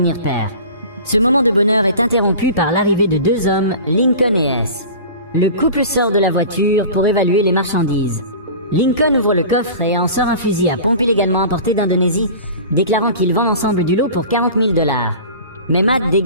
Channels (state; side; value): inverted; both; correlation -0.38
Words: père. Ce moment de bonheur est interrompu par l'arrivée de 2 hommes, Lincoln et S. Le couple sort de la voiture pour évaluer les marchandises. Lincoln ouvre le coffre et en sort un fusil à pompe illégalement importé d'Indonésie, déclarant qu'il vend l'ensemble du lot pour 40 000 $. Mais Matt